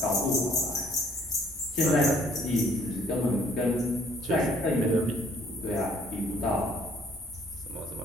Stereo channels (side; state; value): both; normal; correlation 0.61